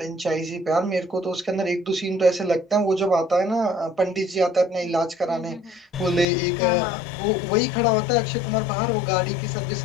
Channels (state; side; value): drops out; right; at 6.2 s